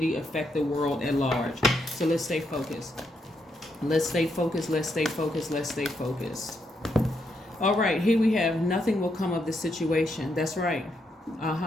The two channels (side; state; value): both; normal; correlation 0.79